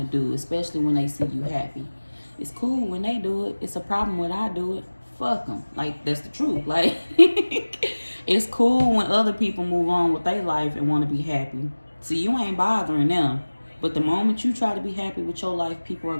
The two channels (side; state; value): both; inverted; correlation -1.00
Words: do, especially when they see you happy. It's cool when they do it. It's a problem when I do it. Fuck them. Like, that's the truth. Like, it's cool when other people move on with their life and want to be happy. See, you ain't bothering them. But the moment you try to be happy with your life, people are